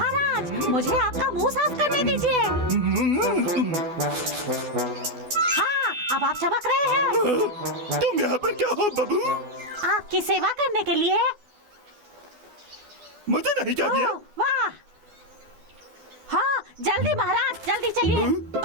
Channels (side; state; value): left; late; 12 ms